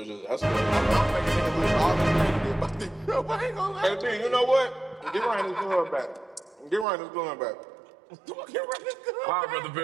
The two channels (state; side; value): drops out; left; at 6.9 s